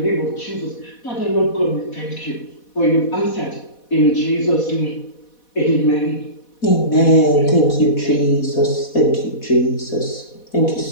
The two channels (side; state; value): right; late; 4.1 ms